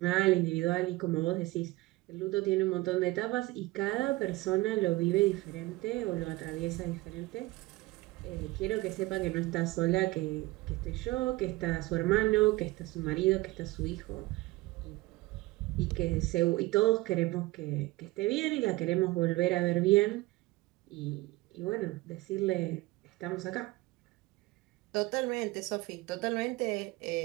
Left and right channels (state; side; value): quieter; left; 20.4 dB